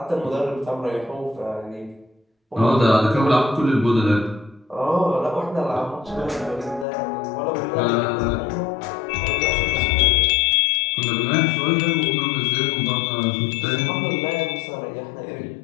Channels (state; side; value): drops out; right; at 6.9 s